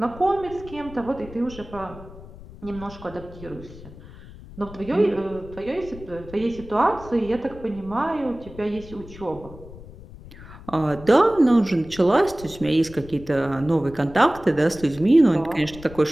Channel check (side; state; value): left; noise; rumble, 17 dB below the sound